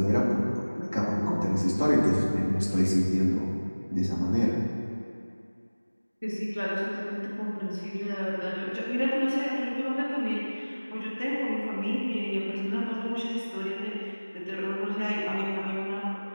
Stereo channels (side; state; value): both; inverted; correlation -1.00